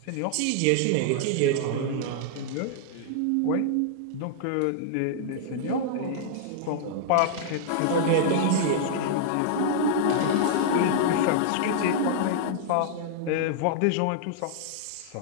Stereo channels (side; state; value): both; different; correlation -0.01